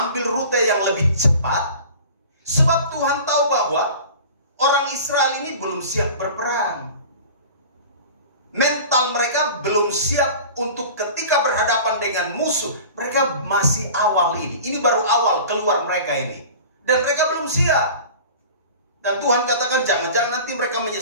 rute yang lebih cepat. Sebab Tuhan tahu bahwa orang Israel ini belum siap berperang. Mental mereka belum siap untuk ketika berhadapan dengan musuh. Mereka masih awal ini. Ini baru awal keluar mereka ini. Dan mereka belum siap. Dan Tuhan katakan jangan-jangan nanti mereka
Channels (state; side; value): inverted; both; correlation -0.39